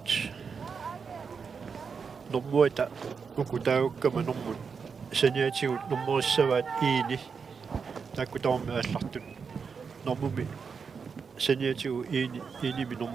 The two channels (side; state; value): left; quieter; 5.8 dB